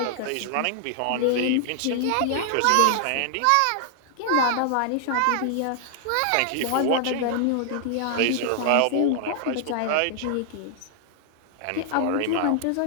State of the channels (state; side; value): different; both; correlation 0.00